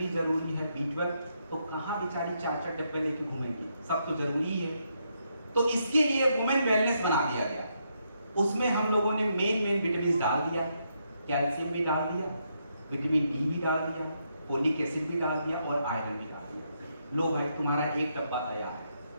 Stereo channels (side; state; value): both; inverted; correlation -0.79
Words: जरूरी है, B12, तो कहां बेचारी 4-4 डब्बे लेके घूमेंगी, सब तो जरूरी है। तो इसके लिए वुमेन वेलनेस बना दिया गया। उसमें हम लोगों ने मेन विटामिन डाल दिया, कैल्शियम भी डाल दिया, विटामिन डी भी डाल दिया, फोलिक एसिड भी डाल दिया और आयरन भी डाल दिया। लो भाई, तुम्हारा एक डब्बा तैयार है।